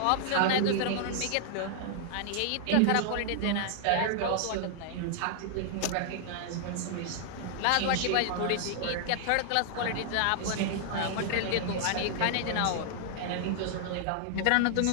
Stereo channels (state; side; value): different; both; correlation 0.00